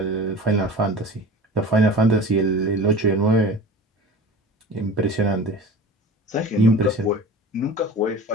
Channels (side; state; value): both; normal; correlation 0.37